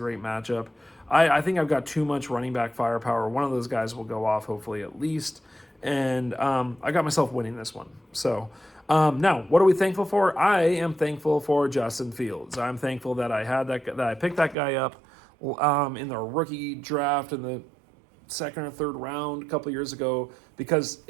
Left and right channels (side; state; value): left; drops out; at 14.6 s